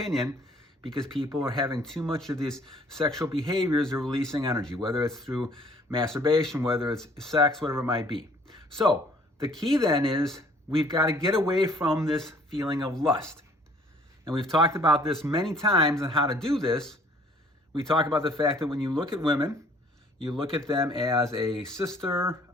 because people are having too much of these sexual behaviors. They're releasing energy, whether it's through masturbation, whether it's sex, whatever it might be. So the key then is we've got to get away from this feeling of lust. And we've talked about this many times on how to do this. We talk about the fact that when you look at women, you look at them as a sister,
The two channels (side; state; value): both; normal; correlation 0.58